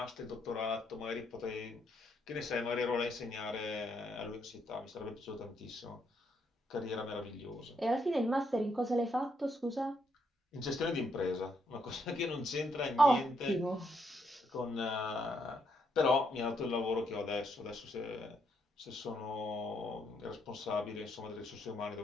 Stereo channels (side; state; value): both; normal; correlation 0.75